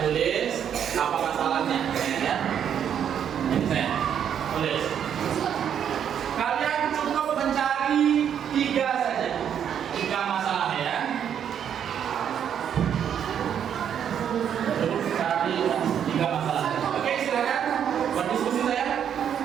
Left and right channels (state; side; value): quieter; left; 8.8 dB